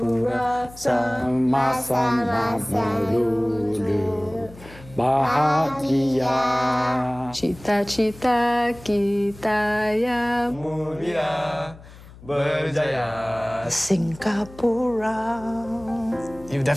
sama-sama melulu bahagia. Cita-cita kita yang Mulia berjaya. Singapura. You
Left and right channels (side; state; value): left; noise; hum, 20 dB below the sound